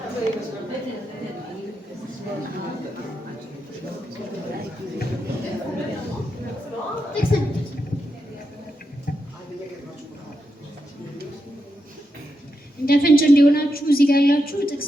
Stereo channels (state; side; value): normal; both; correlation 0.85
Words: እንደ ፍንጭ እንዲሆናችሁ እዚህ ጋር ያላችሁ